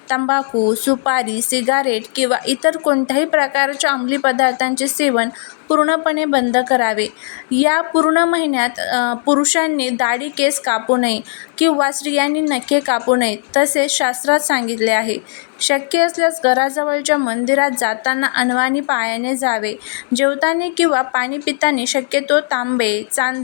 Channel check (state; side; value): silent; right; 66 dB below the other